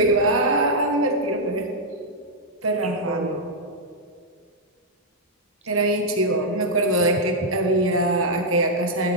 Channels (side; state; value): both; normal; correlation -0.05